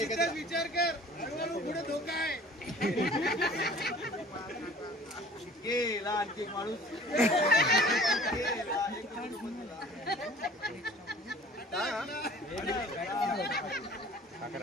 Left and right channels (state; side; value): normal; both; correlation 0.48